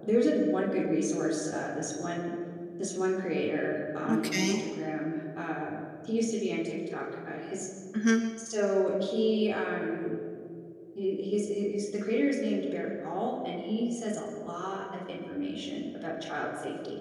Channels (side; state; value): both; identical; correlation 1.00